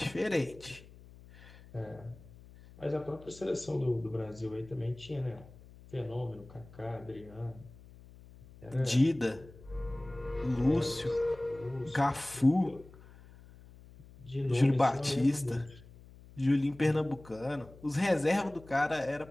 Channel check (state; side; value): noise; left; hum, 21 dB below the sound